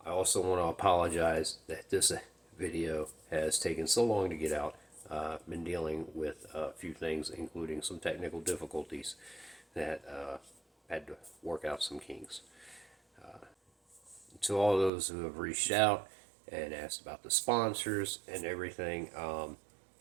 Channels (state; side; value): drops out; left; at 14.9 s